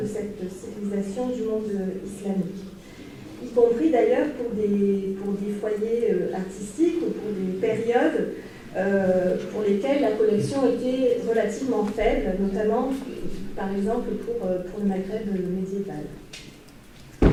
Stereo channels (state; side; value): identical; both; correlation 1.00